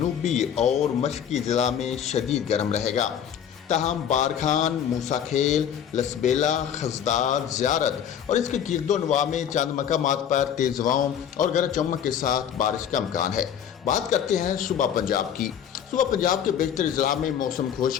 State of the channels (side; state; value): right; quieter; 8.9 dB